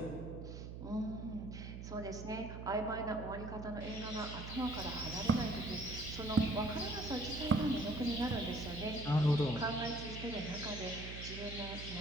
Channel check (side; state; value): right; noise; hum, 9 dB below the sound